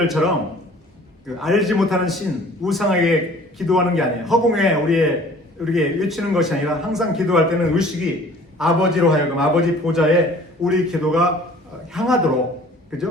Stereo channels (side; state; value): both; normal; correlation 0.50